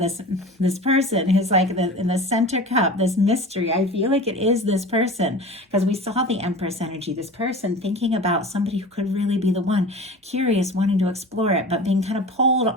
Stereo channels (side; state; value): both; normal; correlation 0.36